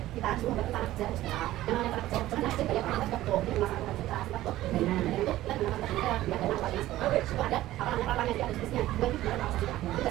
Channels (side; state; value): left; quieter; 15.2 dB